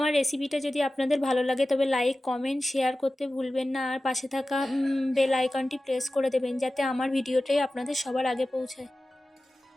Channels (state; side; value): normal; both; correlation 0.95